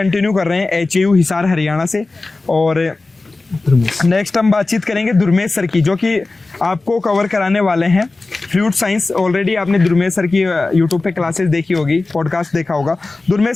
कर रहे हैं एचयू हिसार हरियाणा से। और नेक्स्ट हम बातचीत करेंगे दुर्मेश सर की, जो कि आपको कवर कराने वाले हैं फ्रूट साइंस। ऑलरेडी आपने दुर्मेश सर की यूट्यूब पे क्लासेस देखी होगी, पॉडकास्ट देखा होगा। दुर्मेश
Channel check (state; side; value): quieter; right; 3.4 dB